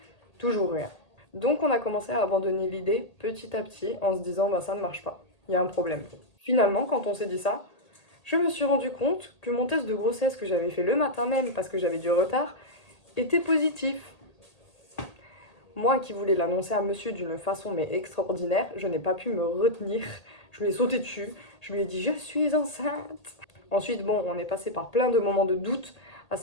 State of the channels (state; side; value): late; right; 1.8 ms